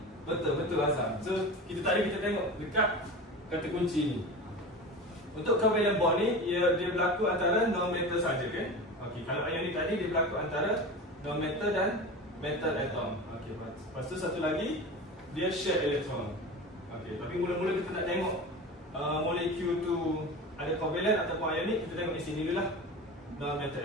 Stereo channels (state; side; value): normal; both; correlation 0.30